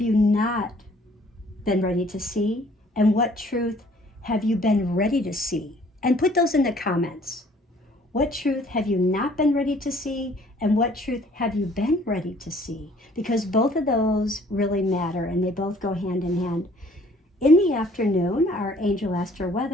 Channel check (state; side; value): normal; both; correlation 0.57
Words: you not been ready to see? And what truth have you been ready to see? And put those in the comments. What truth have you not been ready to see? And what truth have you been ready to see? Because both of those really matter and they both go hand in hand. In the afternoon, our angel astro